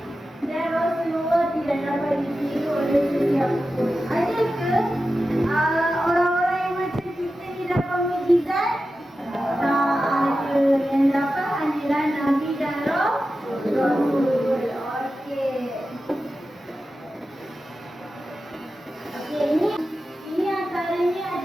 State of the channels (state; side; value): normal; both; correlation 0.92